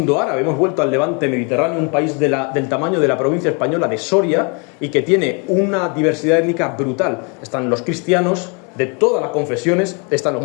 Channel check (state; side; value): quieter; right; 34.4 dB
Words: árabe, hemos vuelto al levante mediterráneo, un país del tamaño de la provincia española de Soria y que tiene una diversidad étnica brutal. Están los cristianos, de todas las confesiones. Están los